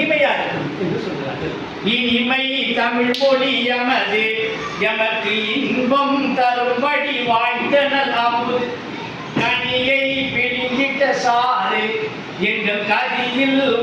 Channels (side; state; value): both; identical; correlation 1.00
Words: இருக்கும் என்று சொல்கிறார்கள். இனிமை தமிழ் மொழி எமது எமக்கு இன்பம் தரும்படி வாய்ந்தனல் அமுது கனியை பிடிங்கிட்ட சாறு எங்கள் கதியில்